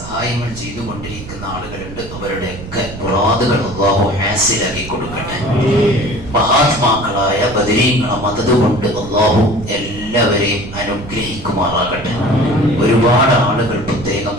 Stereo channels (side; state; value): right; noise; rumble, 12 dB below the sound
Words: ചെയ്തുകൊണ്ടിരിക്കുന്ന ആളുകളുണ്ട്. അവരുടെയൊക്കെ മുറാദുകൾ അല്ലാഹു ഹാസിലാക്കി കൊടുക്കട്ടെ. മഹാത്മാക്കളായ ബദരീങ്ങളെ മദദ് കൊണ്ട് അല്ലാഹു എല്ലാവരെയും അനുഗ്രഹിക്കുമാറാകട്ടെ. ഒരുപാട് ആളുകൾ പ്രത്യേകം